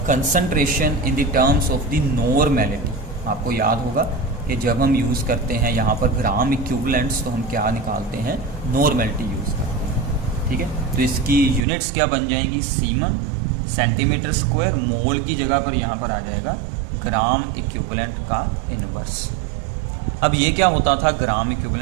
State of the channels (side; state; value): left; drops out; at 11.6 s